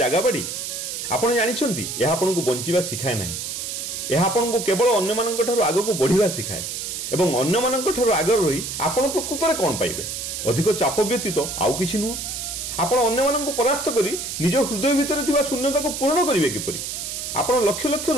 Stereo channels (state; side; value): noise; right; hiss, 5 dB below the sound